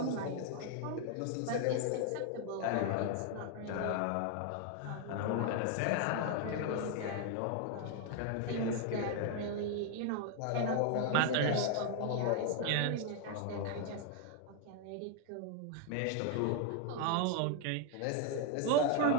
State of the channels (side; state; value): both; different; correlation 0.00